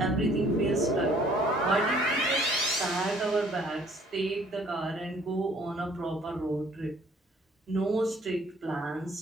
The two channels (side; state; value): both; normal; correlation 0.58